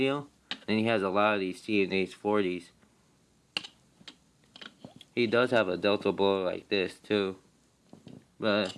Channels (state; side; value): identical; both; correlation 1.00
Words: and he has a lot of these CNH 40s. He does have a Delta bow like this too. But